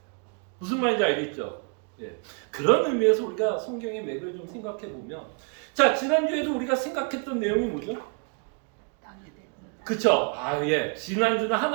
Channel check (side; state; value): left; quieter; 38.5 dB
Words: 무슨 말인지 알겠죠? 예. 그런 의미에서 우리가 성경의 맥을 좀 생각해 보면, 자, 지난주에도 우리가 생각했던 내용이 뭐죠? 그쵸? 예. 지난주는